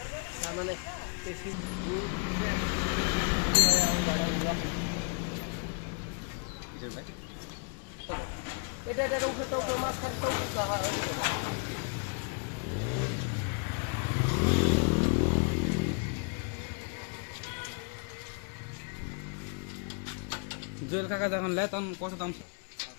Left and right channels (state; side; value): quieter; right; 40.0 dB